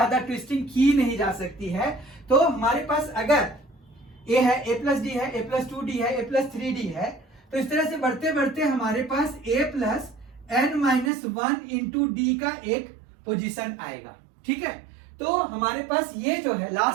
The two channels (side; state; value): left; drops out; at 11.1 s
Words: ट्विस्टिंग की नहीं जा सकती है। तो हमारे पास अगर ए है, ए प्लस डी है, ए प्लस 2d है, ए प्लस 3d है, तो इस तरह से बढ़ते बढ़ते हमारे पास a plus N minus 1 into d का एक पोजीशन आएगा। ठीक है, तो हमारे पास ये जो है